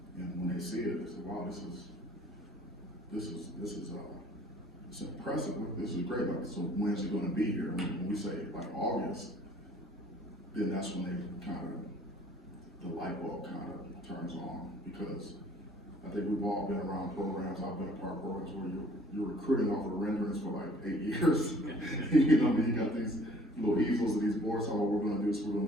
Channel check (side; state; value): both; normal; correlation 0.54